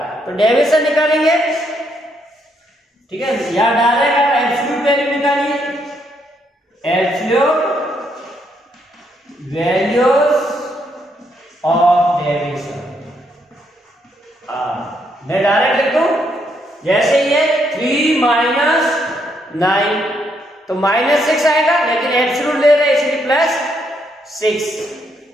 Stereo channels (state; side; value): normal; both; correlation 0.75